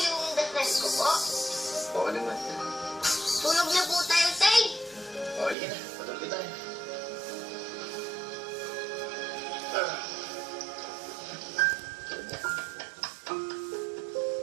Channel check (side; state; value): left; drops out; at 5.6 s